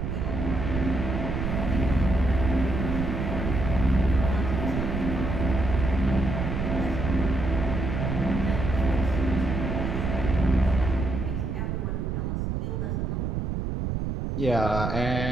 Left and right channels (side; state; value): right; noise; rumble, 2 dB below the sound